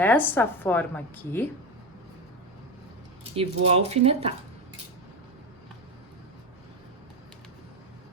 forma aqui e vou alfinetar.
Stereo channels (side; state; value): both; normal; correlation 0.17